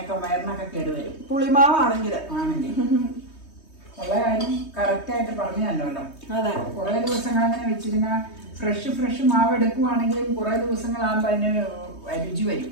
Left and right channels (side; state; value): right; late; 3.2 ms